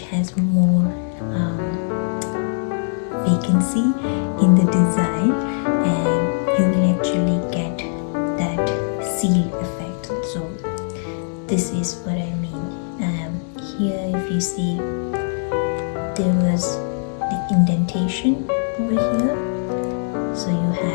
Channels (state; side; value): silent; right; digital silence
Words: has more vacancy in the design, and you will actually get that seal effect. So this is what I mean. Here if you see, there was the indentation over here, so you